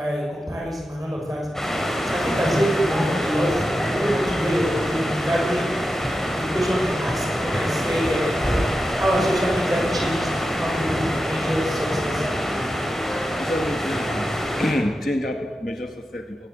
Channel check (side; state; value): both; normal; correlation 0.90